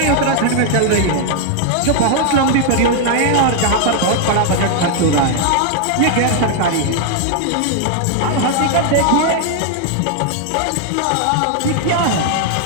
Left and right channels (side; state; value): both; different; correlation 0.00